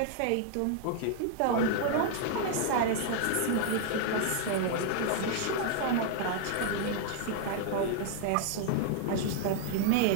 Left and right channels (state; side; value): different; both; correlation 0.00